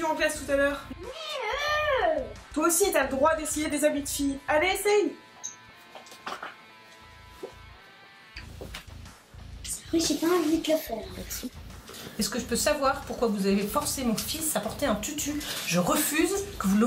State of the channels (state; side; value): identical; both; correlation 1.00